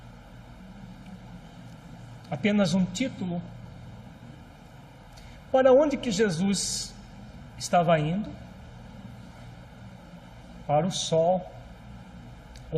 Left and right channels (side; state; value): both; identical; correlation 1.00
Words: Apenas um título? Para onde que Jesus estava indo? Para o sol,